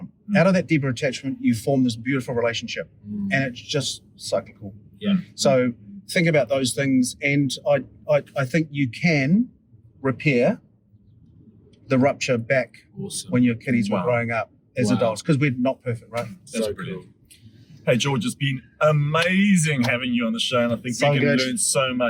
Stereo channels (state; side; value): identical; both; correlation 1.00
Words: Out of that deeper attachment, you form this beautiful relationship, and it's just cyclical. Yeah. So think about those things, and I think you can repair the rupture back Awesome. when your kiddies were Wow. growing up as Wow. adults, because we're not perfect, right? That's So brilliant. cool. Hey, George, it's been amazing having you on the show, and I think So we can good. learn so